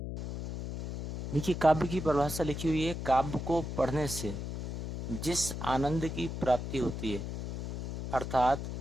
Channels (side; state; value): left; noise; hum, 5 dB below the sound